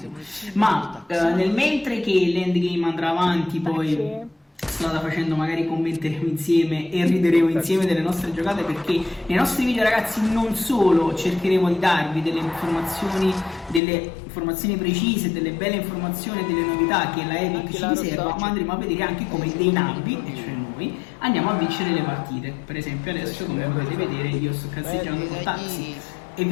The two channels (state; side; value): drops out; right; at 13.8 s